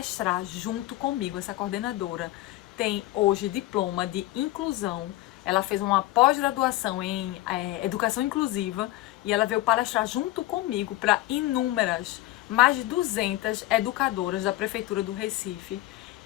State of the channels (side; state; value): right; quieter; 16.9 dB